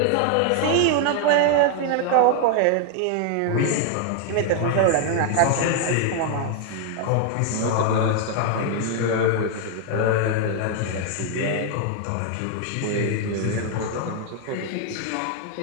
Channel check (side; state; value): both; different; correlation 0.00